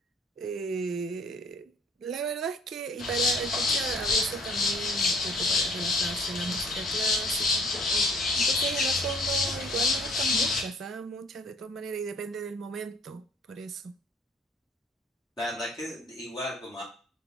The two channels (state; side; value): normal; both; correlation 0.56